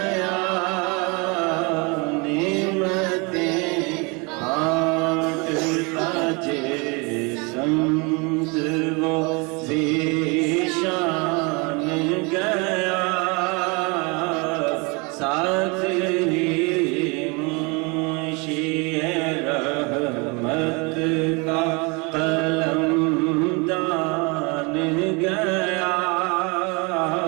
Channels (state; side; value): quieter; left; 29.7 dB